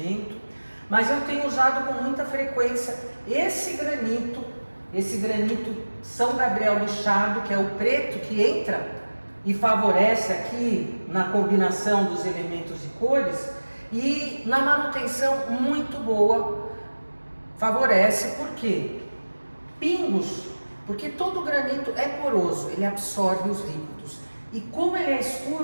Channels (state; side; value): inverted; both; correlation -1.00